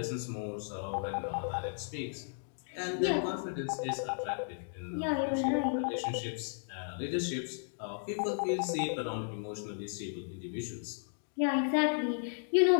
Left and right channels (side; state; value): right; silent; digital silence